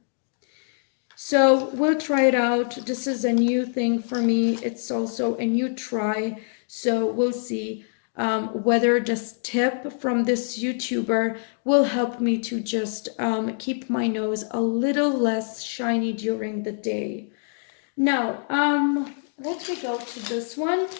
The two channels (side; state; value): right; silent; digital silence